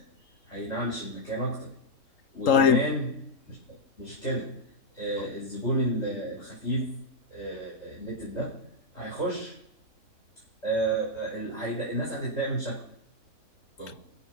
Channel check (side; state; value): right; late; 3.8 ms